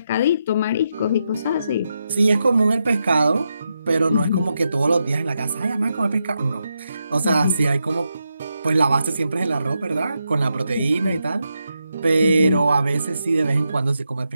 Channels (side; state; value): both; inverted; correlation -0.85